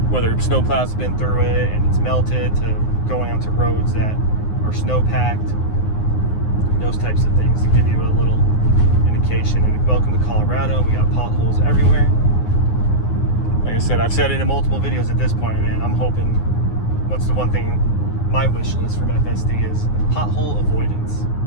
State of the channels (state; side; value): late; right; 9.6 ms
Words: whether snowplows have been through it and it's melted, to going onto roads that are snow packed, those types of things to give you a little indication. And welcome to Colorado. We got potholes everywhere. Like I said, I've said it in multiple videos at this point, man. I'm hoping, what's the one thing, my wish list from FSD is pothole avoidance.